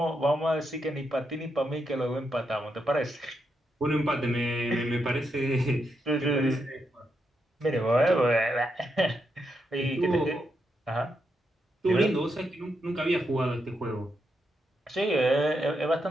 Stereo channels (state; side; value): normal; both; correlation 0.82